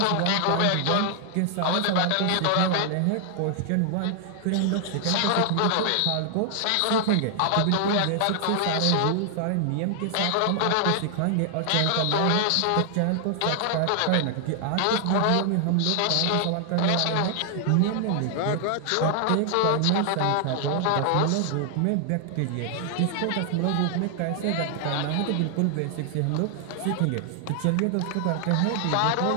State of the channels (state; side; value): different; both; correlation 0.00